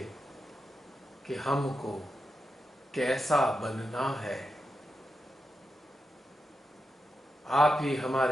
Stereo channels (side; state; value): both; normal; correlation 0.88